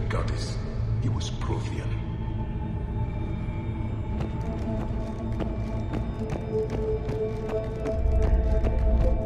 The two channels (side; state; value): both; identical; correlation 1.00